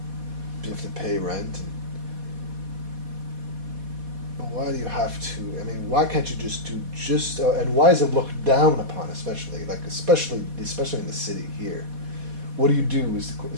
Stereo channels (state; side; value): late; left; 4.2 ms